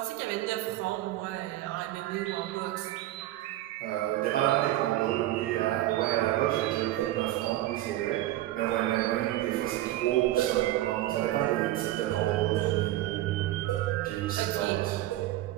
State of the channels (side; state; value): left; quieter; 15.1 dB